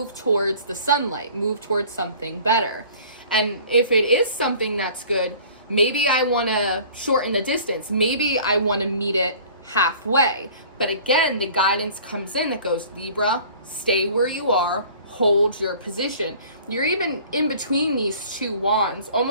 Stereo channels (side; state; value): both; inverted; correlation -0.48